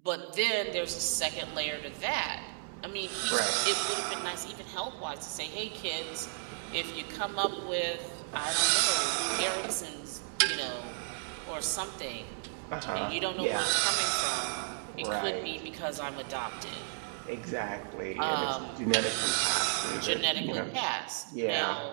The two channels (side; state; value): left; silent; digital silence